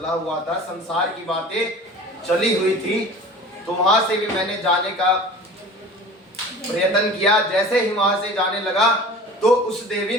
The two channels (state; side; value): normal; both; correlation 0.41